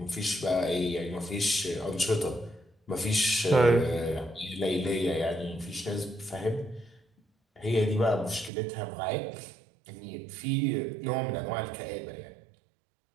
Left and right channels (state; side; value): drops out; left; at 8.5 s